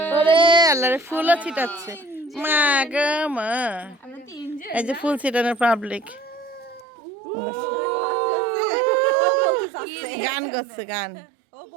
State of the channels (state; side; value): drops out; left; at 6.9 s